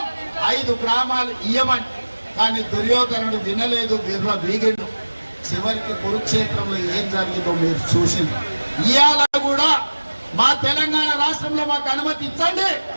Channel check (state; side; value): inverted; both; correlation -1.00